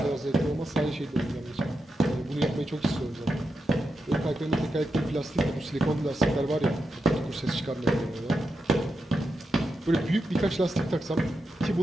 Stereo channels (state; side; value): normal; both; correlation 0.87